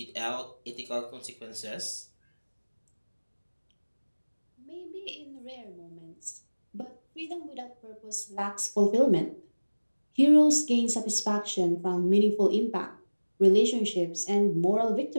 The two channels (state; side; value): inverted; both; correlation -1.00